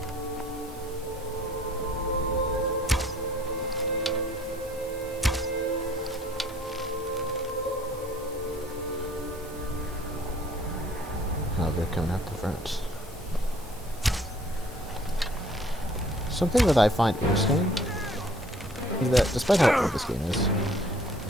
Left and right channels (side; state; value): both; normal; correlation 0.57